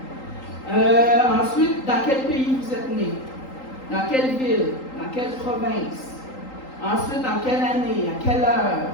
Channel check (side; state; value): right; late; 3.8 ms